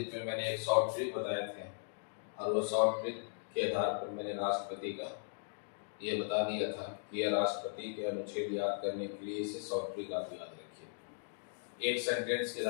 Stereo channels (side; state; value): right; silent; digital silence